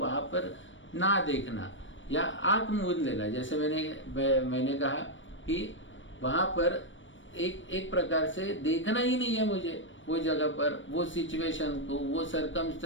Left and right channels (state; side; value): late; right; 0.56 ms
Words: पर ना देखना, या आंख मूंद लेना। जैसे मैंने कहा कि वहां पर एक प्रकार से देखना ही नहीं है मुझे, वो जगह पर, वो सिचुएशन को, वो